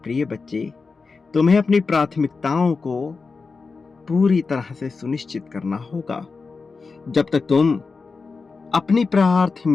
बच्चे, तुम्हें अपनी प्राथमिकताओं को पूरी तरह से सुनिश्चित करना होगा। जब तक तुम अपनी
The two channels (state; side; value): quieter; right; 4.5 dB